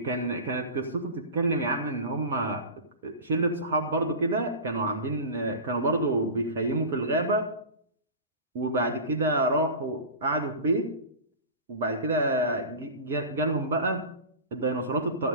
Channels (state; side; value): inverted; both; correlation -0.31